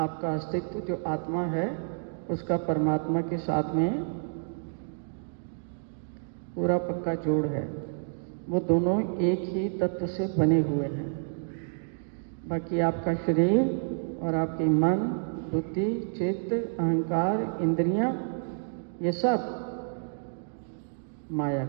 अस्तित्व, जो आत्मा है उसका परमात्मा के साथ में पूरा पक्का जोड़ है। वो दोनों एक ही तत्व से बने हुए हैं। बाकी आपका शरीर और आपकी मन, बुद्धि, चित्त, अहंकार, इंद्रियां, ये सब माया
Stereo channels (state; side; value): silent; left; digital silence